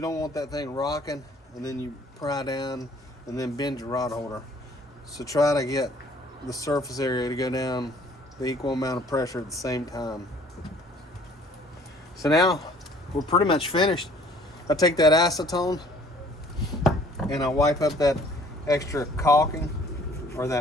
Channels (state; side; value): normal; both; correlation 0.56